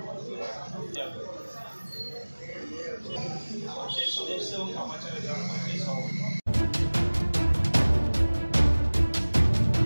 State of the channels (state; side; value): inverted; both; correlation -1.00